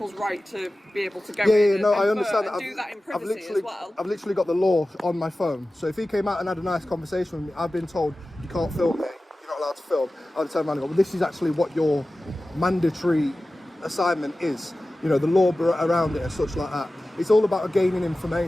right to be able to go in and I understand and that. do that in privacy as well. I've literally got the law on my phone. So if he came out and had a nice conversation with me, I've been told you can't film me, you're not allowed to film. I'd turn around and go, well, this is actually what your mandatory assignment is. You know, the law around it and such like that. It's all about gaining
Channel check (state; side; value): normal; both; correlation 0.96